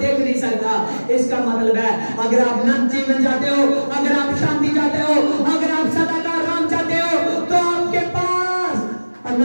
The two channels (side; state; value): both; inverted; correlation -1.00